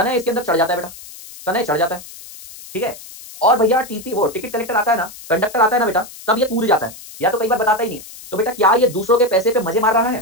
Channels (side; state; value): left; noise; hiss, 16 dB below the sound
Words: इसके अंदर चढ़ जाता है बेटा, तनय चढ़ जाता है, ठीक है। और भैया टीटी वो टिकट कलेक्टर आता है ना, कंडक्टर आता है ना बेटा, तब ये कूद जाता है, या तो कई बार बताता ही नहीं है। तो बेटा क्या ये दूसरों के पैसे पे मजे मार रहा